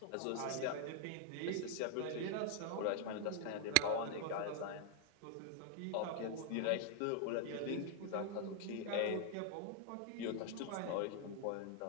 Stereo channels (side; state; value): both; different; correlation 0.00